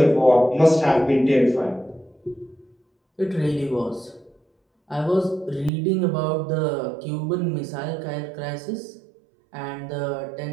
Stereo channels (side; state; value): left; drops out; at 5.7 s